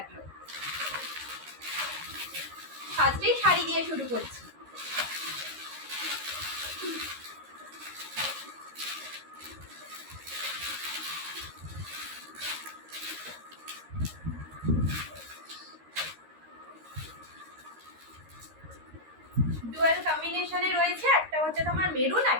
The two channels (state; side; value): late; left; 13 ms